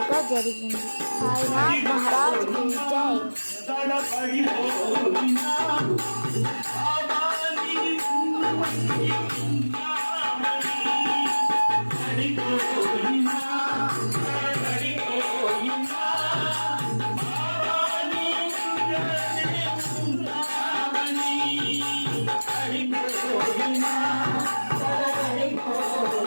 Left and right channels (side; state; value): both; inverted; correlation -1.00